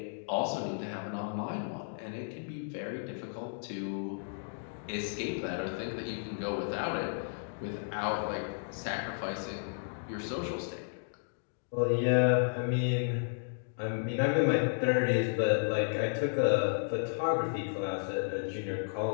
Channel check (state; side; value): silent; right; digital silence